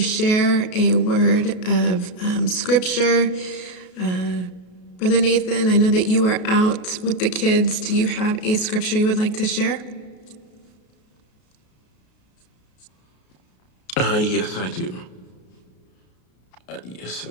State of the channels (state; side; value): late; right; 33 ms